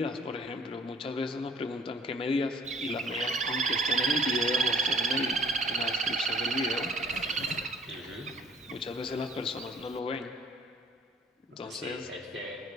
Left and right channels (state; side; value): normal; both; correlation 0.54